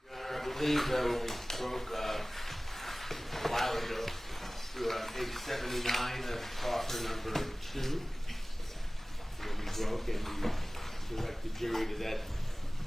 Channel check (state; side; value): normal; both; correlation 0.98